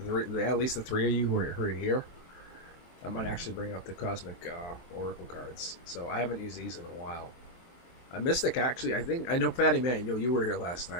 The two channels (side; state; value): right; late; 23 ms